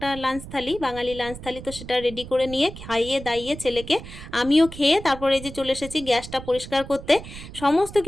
লাঞ্চ থালি, বাঙালি লাঞ্চ থালি, তো সেটা রেডি করে নিয়ে খাইয়ে দাইয়ে ছেলেকে আমিও খেয়ে তারপরে এই যে চলে এসেছি গ্যাসটা পরিষ্কার করতে। সমস্ত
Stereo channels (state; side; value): noise; right; rumble, 13 dB below the sound